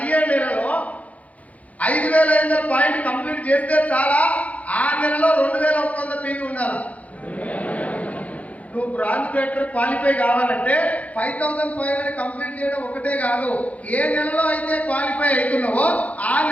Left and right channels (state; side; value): late; right; 0.069 ms